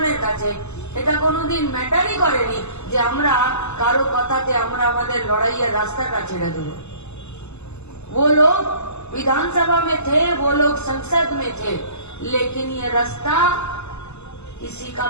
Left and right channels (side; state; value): right; late; 0.81 ms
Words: কাছে এটা কোনোদিন ম্যাটারই করেনি যে আমরা কারো কথাতে আমরা আমাদের লড়াইয়ের রাস্তাটা ছেড়ে দেব। वो लोग विधानसभा में थे, वो लोग संसद में थे, लेकिन ये रास्ता किसी का